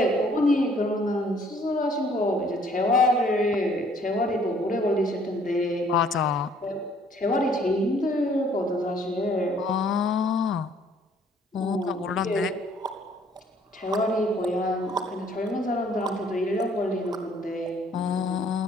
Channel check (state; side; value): normal; both; correlation 0.61